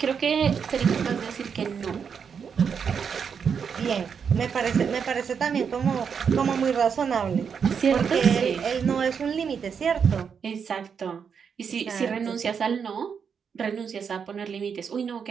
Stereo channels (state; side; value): quieter; left; 6.7 dB